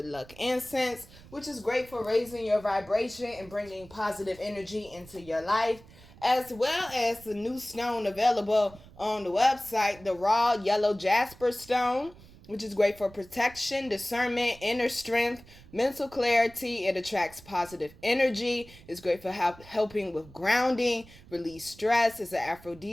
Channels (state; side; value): noise; right; rumble, 22 dB below the sound